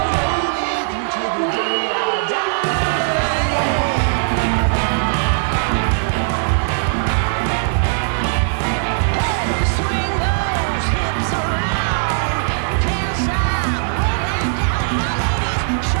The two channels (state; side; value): silent; left; digital silence